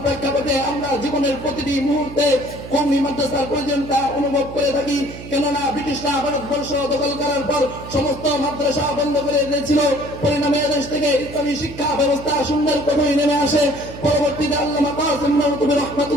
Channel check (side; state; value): right; noise; hum, 13 dB below the sound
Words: প্রেক্ষাপটে আমরা জীবনের প্রতিটি মুহূর্তে কওমি মাদ্রাসার প্রয়োজনীয়তা অনুভব করে থাকি। কেননা ব্রিটিশরা ভারতবর্ষ দখল করার পর সমস্ত মাদ্রাসা বন্ধ করে দিয়েছিল। পরিণামে দেশ থেকে ইসলামী শিক্ষা ব্যবস্থা শূন্যের কোঠায় নেমে আসে। পরবর্তীতে আল্লামা কাসিম নওয়াবী